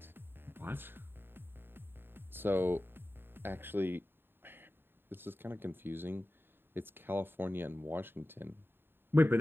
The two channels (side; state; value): left; late; 0.10 ms